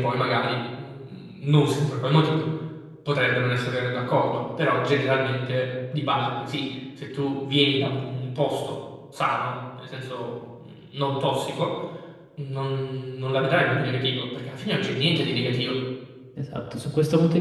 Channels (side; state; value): both; identical; correlation 1.00